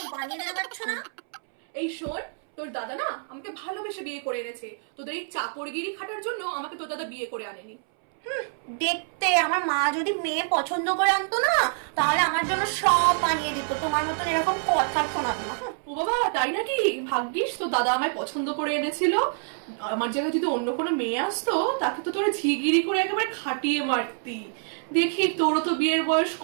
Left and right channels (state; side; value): silent; left; 61 dB below the other